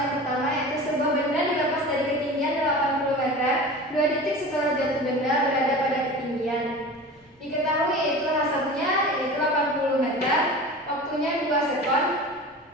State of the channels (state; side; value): normal; both; correlation 0.35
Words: pertama, yaitu sebuah benda dilepas dari ketinggian 80 meter, 2 detik setelah jatuh benda berada pada ketinggian. Diketahui yaitu hasilnya yaitu 80 meter, waktunya 2 sekon,